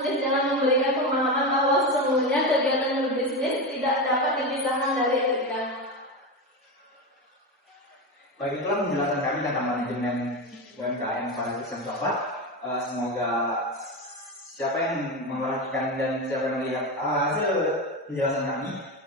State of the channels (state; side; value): normal; both; correlation 0.18